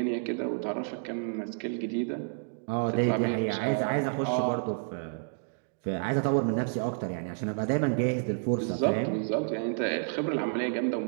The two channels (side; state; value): left; silent; digital silence